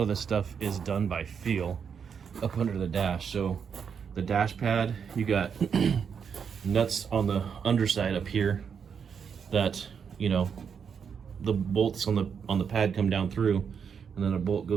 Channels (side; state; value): left; quieter; 6.9 dB